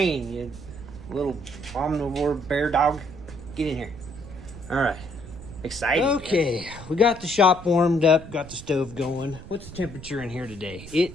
you little omnivore bear dog. Get in here. All right. Excited. Okay, we got the shop warmed up, got the stove going. What's the temperature in here today?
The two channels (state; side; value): noise; right; rumble, 15 dB below the sound